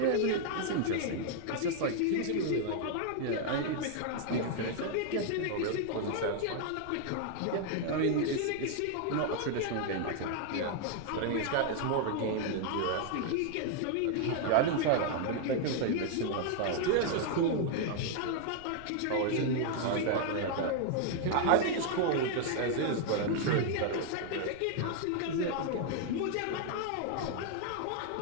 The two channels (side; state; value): both; different; correlation 0.00